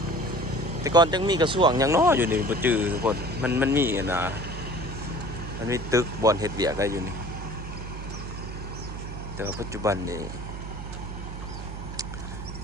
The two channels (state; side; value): noise; right; hum, 8 dB below the sound